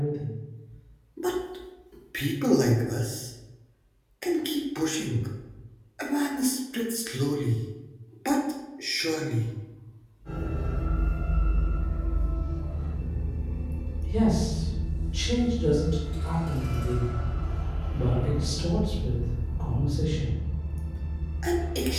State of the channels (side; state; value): both; identical; correlation 1.00